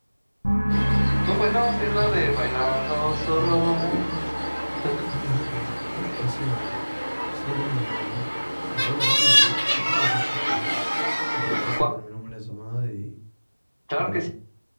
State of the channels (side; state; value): both; inverted; correlation -1.00